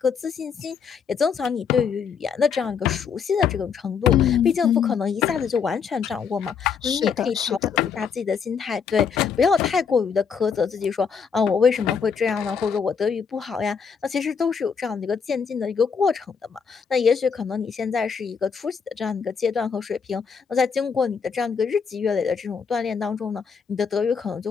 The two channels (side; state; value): right; quieter; 6.2 dB